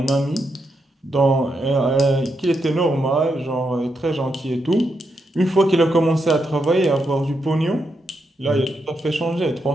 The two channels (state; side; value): normal; both; correlation 0.82